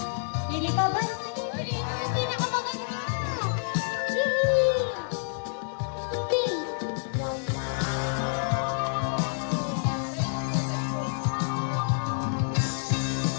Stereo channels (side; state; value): right; silent; digital silence